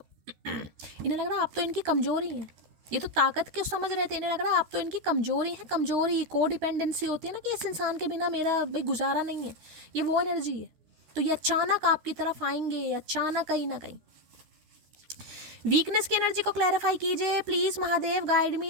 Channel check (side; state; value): left; late; 13 ms